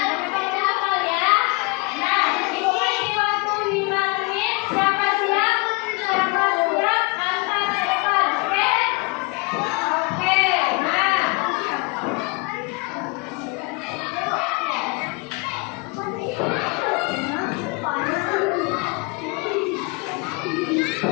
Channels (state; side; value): quieter; right; 28.4 dB